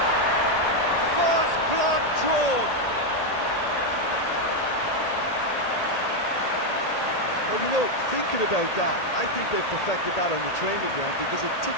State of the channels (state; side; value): late; right; 1.8 ms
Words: Well, you know, thinking about that, I think they perfected that on the training ground because it took